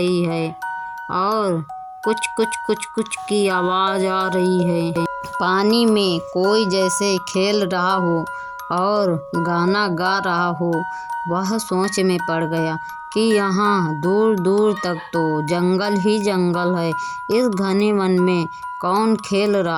है और कुछ कुछ कुछ कुछ की आवाज़ आ रही है। पानी में कोई जैसे खेल रहा हो और गाना गा रहा हो। वह सोच में पड़ गया कि यहाँ दूर दूर तक तो जंगल ही जंगल है। इस घने वन में कौन खेल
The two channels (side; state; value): both; identical; correlation 1.00